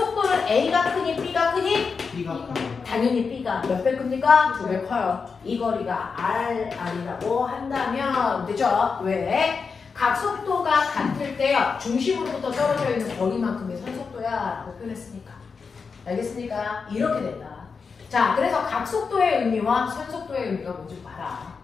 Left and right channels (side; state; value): right; quieter; 5.2 dB